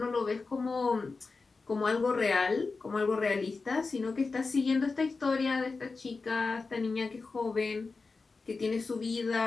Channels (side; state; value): right; quieter; 4.1 dB